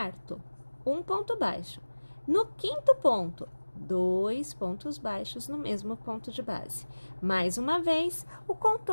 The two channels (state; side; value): inverted; both; correlation -1.00